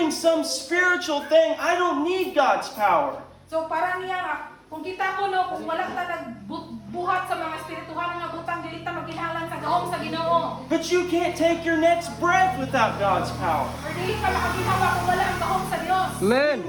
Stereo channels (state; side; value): identical; both; correlation 1.00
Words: some spiritual thing, I don't need God's power. So, para niya nga kung kita ko no, kung wala ta nagbuhat sa mga espirituhan nga butang dili ta magkinahanglan sa gahom sa Ginoo. But you can't take your next breath without God's power. Or dili ka makaginawa kung wala ang gahom sa Dios.